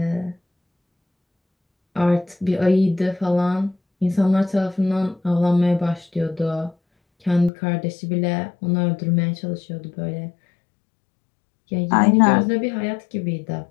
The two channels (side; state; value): right; drops out; at 7.5 s